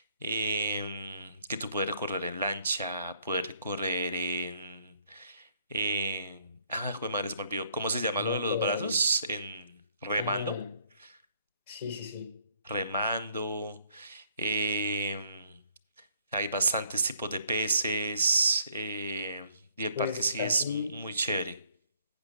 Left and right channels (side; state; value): both; inverted; correlation -0.65